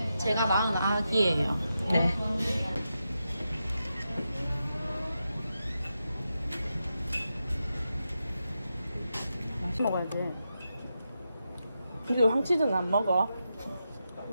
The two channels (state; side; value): inverted; both; correlation -0.87